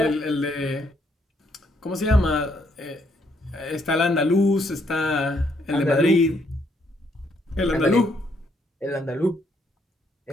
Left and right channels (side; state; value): both; normal; correlation 0.72